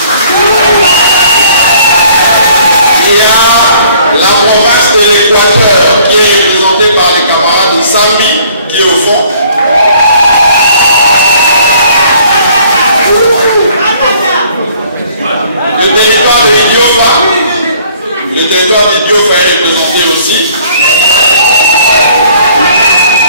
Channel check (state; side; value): inverted; both; correlation -0.58